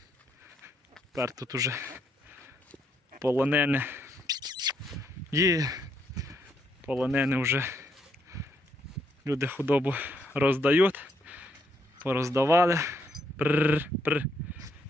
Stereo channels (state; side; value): normal; both; correlation 0.74